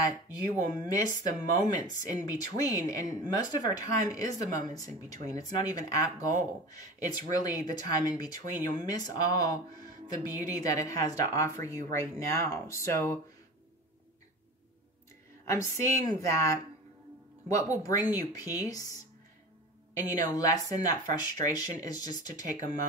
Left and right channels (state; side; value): normal; both; correlation 0.33